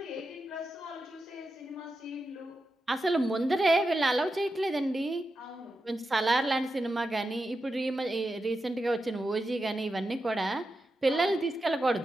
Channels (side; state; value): both; normal; correlation 0.89